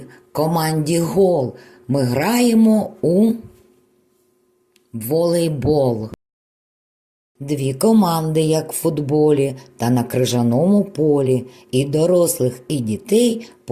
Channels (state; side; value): identical; both; correlation 1.00